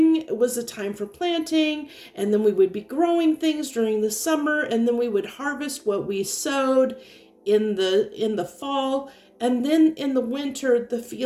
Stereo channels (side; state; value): both; identical; correlation 1.00